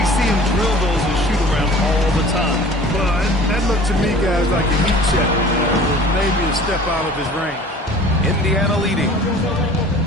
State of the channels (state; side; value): normal; both; correlation 0.46